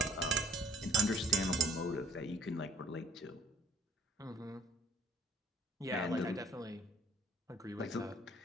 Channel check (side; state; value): both; normal; correlation 0.56